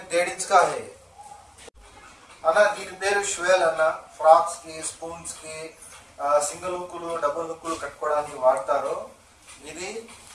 1.5 इंच का है అన్న. దీని పేరు ష్వేల్ అన్న. ఫ్రాక్స్ కి, స్పూన్స్ కి, సింగిల్ హుక్కులు, డబుల్ హుక్కులు కట్టుకోవడానికి వాడతారు. ఇది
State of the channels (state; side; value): identical; both; correlation 1.00